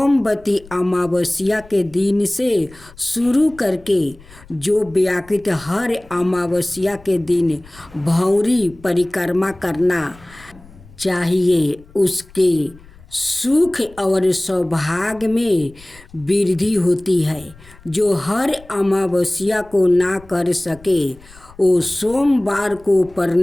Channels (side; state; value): left; noise; rumble, 23 dB below the sound